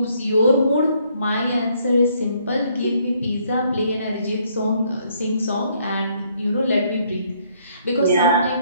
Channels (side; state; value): both; inverted; correlation -0.68